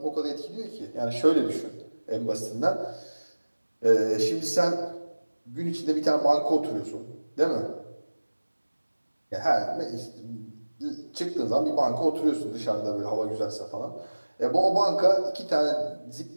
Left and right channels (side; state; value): both; inverted; correlation -1.00